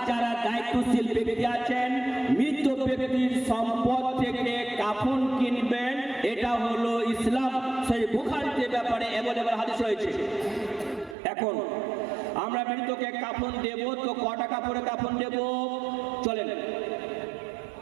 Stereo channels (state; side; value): drops out; left; at 11.2 s